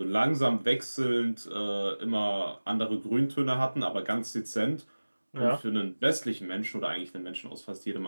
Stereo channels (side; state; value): both; inverted; correlation -1.00